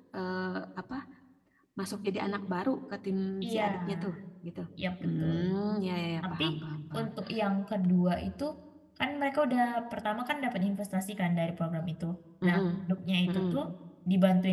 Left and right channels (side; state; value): both; identical; correlation 1.00